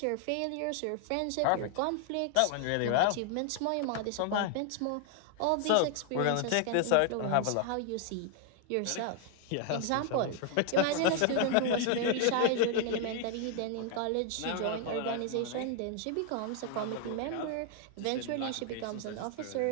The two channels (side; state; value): both; different; correlation 0.00